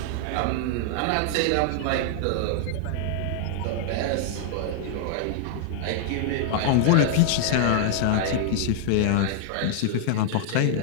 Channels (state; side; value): different; both; correlation -0.01